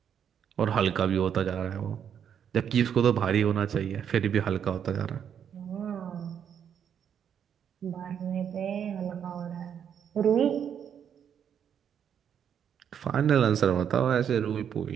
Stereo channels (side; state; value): left; quieter; 8.4 dB